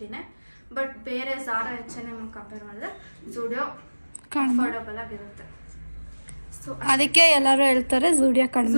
ಬಟ್ ಬೇರೆ ಝಾರಾ H&M ಕಂಪೇರ್ ಮಾಡಿದ್ರೆ ಝೂಡಿಯೋ ಅಫೋರ್ಡಬಲ್ ಆಗಿರುತ್ತೆ. ಸೊ ಅದಕ್ಕೆ ಎಲ್ಲರೂ ಹೇಳ್ತಾರೆ ಝೂಡಿಯೋ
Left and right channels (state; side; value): inverted; both; correlation -1.00